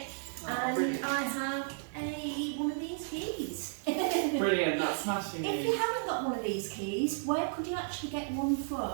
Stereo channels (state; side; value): silent; left; 56 dB below the other